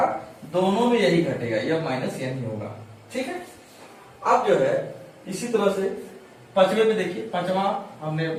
दोनों में यही घटेगा, यह माइनस यह नहीं होगा। ठीक है, अब जो है इसी तरह से पांचवे में देखिए, पांचवा हमने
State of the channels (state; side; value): identical; both; correlation 1.00